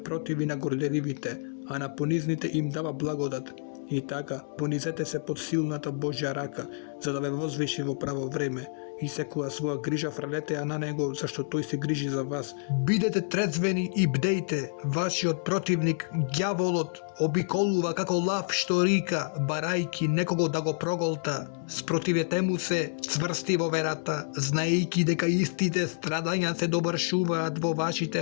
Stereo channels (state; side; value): silent; right; digital silence